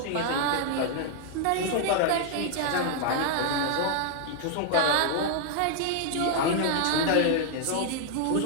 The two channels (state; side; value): different; both; correlation 0.00